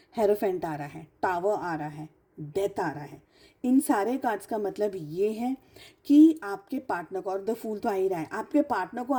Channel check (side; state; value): both; identical; correlation 1.00